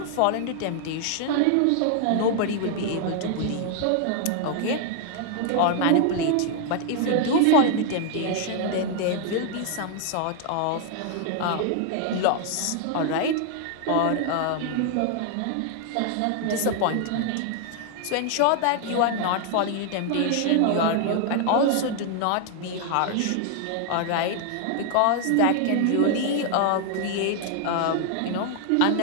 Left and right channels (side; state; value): both; different; correlation 0.00